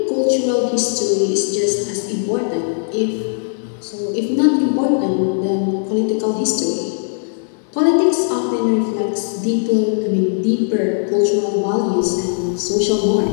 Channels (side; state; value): right; silent; digital silence